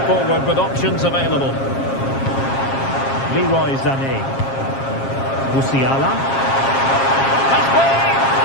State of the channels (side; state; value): right; late; 7.4 ms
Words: forward with options available. Leroy Sané. Musiala.